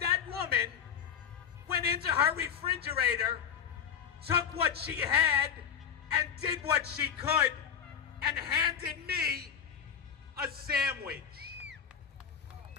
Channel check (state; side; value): quieter; right; 8.2 dB